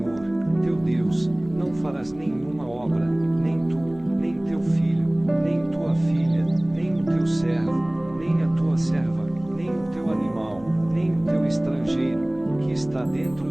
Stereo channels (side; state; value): left; noise; hum, 22 dB below the sound